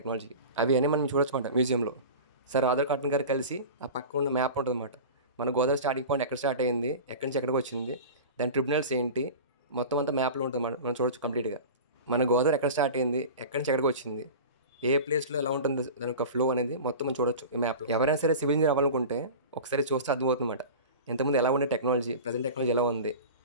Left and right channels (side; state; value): both; inverted; correlation -0.34